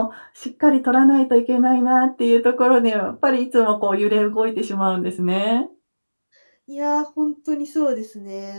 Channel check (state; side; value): inverted; both; correlation -1.00